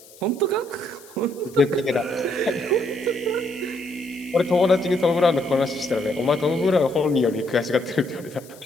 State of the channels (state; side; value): noise; left; hiss, 23 dB below the sound